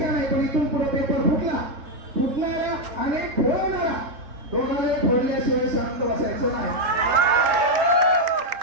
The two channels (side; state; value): left; late; 3.7 ms